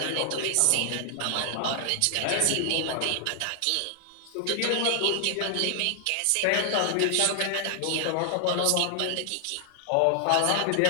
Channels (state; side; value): different; both; correlation 0.00